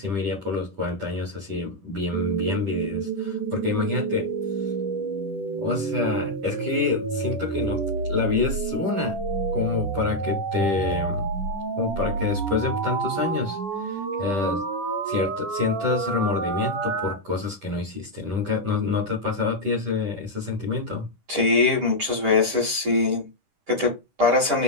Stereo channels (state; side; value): late; left; 10 ms